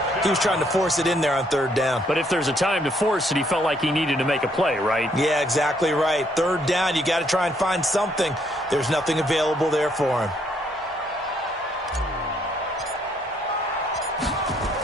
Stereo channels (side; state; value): both; normal; correlation 0.69